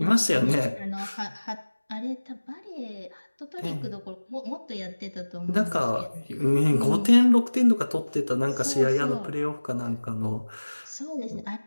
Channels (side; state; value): both; inverted; correlation -1.00